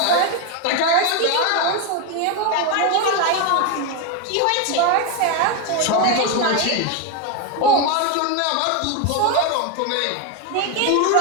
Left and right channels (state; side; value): different; both; correlation 0.02